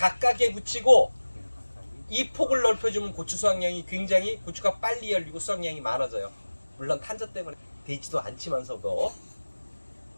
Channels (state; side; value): inverted; both; correlation -1.00